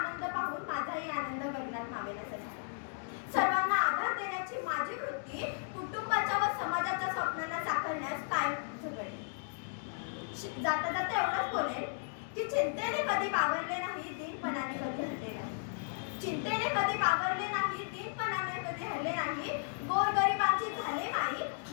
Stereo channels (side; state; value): right; silent; digital silence